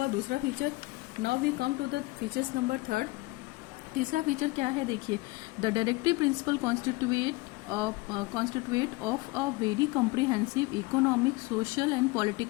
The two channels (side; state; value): right; quieter; 22.8 dB